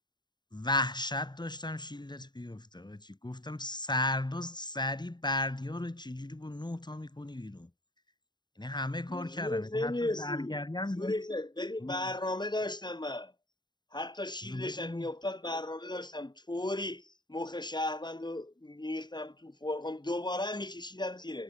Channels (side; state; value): right; late; 0.21 ms